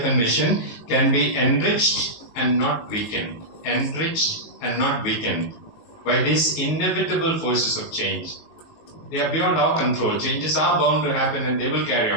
and mission can be enriched and not weakened. Enriched and not weakened by these inevitable forces of change. They are beyond our control. Changes are bound to happen and they will carry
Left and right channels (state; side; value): late; right; 19 ms